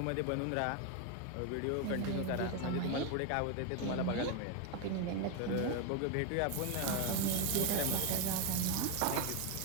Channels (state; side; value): different; both; correlation 0.02